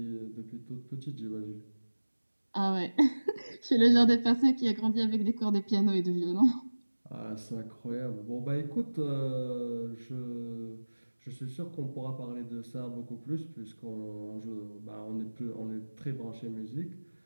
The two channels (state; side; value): inverted; both; correlation -1.00